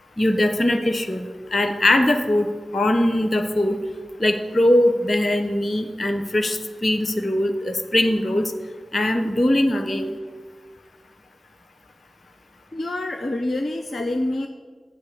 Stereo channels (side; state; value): both; normal; correlation 0.94